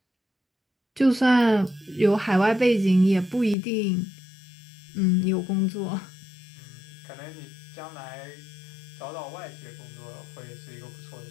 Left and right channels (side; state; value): right; drops out; at 3.6 s